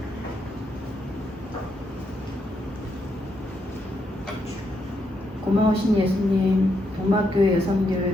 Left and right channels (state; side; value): normal; both; correlation 0.79